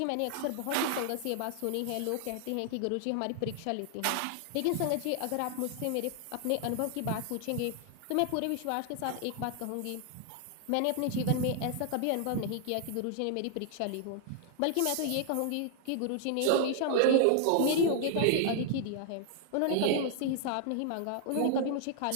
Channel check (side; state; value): both; different; correlation 0.00